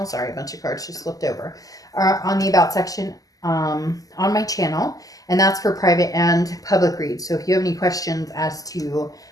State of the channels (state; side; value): late; right; 0.17 ms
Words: Sorry, a bunch of cards just flipped over. Are on the About section on my channel, and that's for private and public reads. So if you have any questions as to